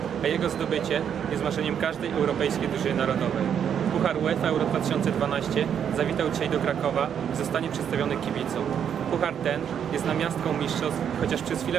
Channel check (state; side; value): quieter; left; 8.4 dB